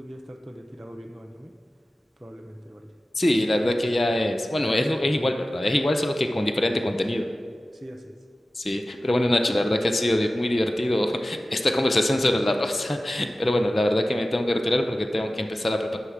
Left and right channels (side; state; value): both; normal; correlation 0.96